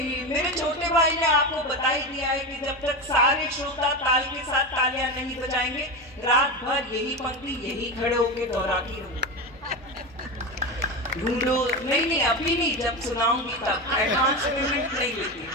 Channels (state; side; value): normal; both; correlation 0.19